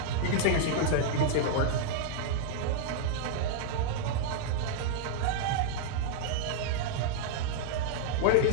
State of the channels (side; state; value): both; different; correlation -0.01